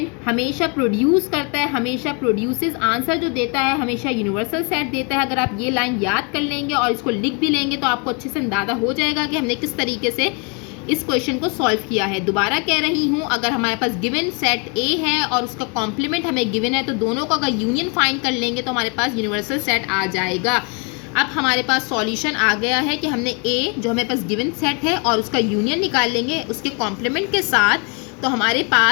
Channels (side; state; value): right; quieter; 34.5 dB